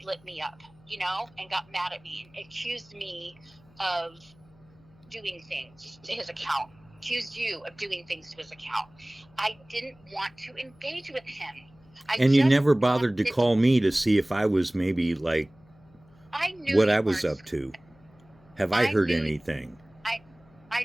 lit me up, and got mad at me and accused me of doing things to his account. Accused you of doing things to his account. I didn't want to engage with him. And you never bothered to call me to see if I was maybe what I was up to. Have I heard anything? I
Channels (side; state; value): left; noise; hum, 28 dB below the sound